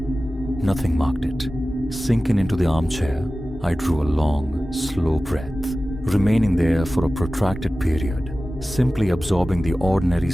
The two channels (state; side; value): normal; both; correlation 0.96